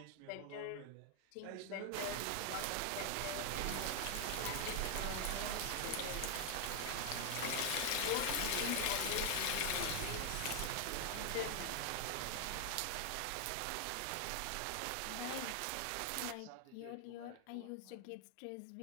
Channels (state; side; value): different; both; correlation 0.00